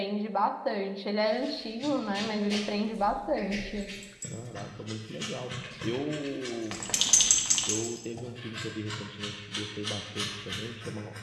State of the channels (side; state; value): both; identical; correlation 1.00